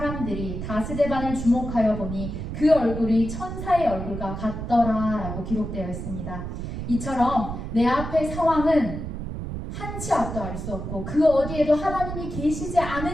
다 스데반을 주목하여 보니 그 얼굴이 천사의 얼굴과 같더라 라고 기록되어 있습니다. 이처럼 내 앞의 상황은 한치 앞도 알 수 없고 그 어디에도 하나님이 계시지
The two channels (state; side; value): noise; right; rumble, 6 dB below the sound